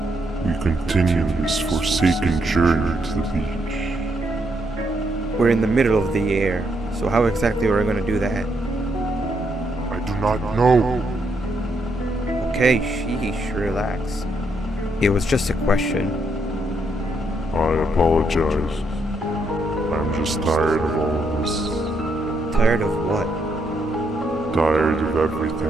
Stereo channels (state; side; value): normal; both; correlation 0.76